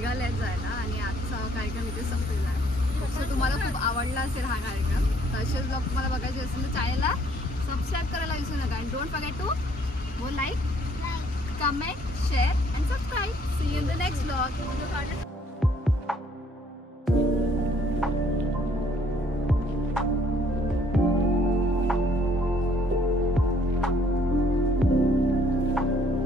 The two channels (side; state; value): both; normal; correlation 0.63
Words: आहेत जायला आणि आजचा कार्यक्रम इथे संपलेला आहे. सो तुम्हाला खूप आवडला असेल हा कार्यक्रम. तर असेच ब्लॉग तुम्हाला बघायचे असेल तर चॅनलला सबस्क्राईब करायला विसरू नका. And don't forget to go like, comment, share and subscribe. See you in the next blog.